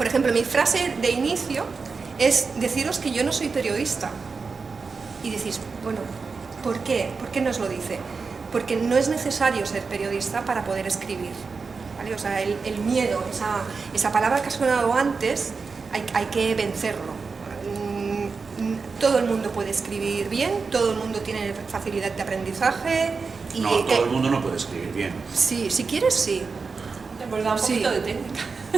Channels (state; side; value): quieter; left; 4.8 dB